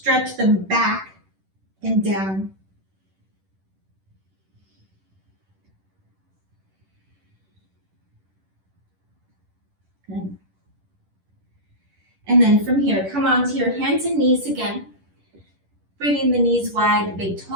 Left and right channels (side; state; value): left; late; 10 ms